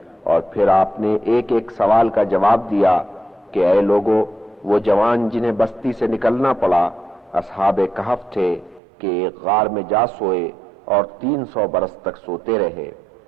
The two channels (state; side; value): drops out; left; at 8.8 s